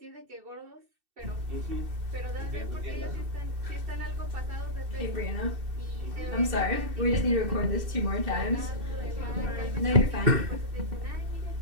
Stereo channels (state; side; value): late; left; 2.7 ms